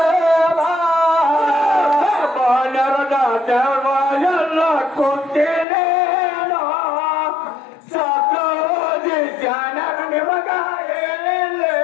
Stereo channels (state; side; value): drops out; right; at 5.7 s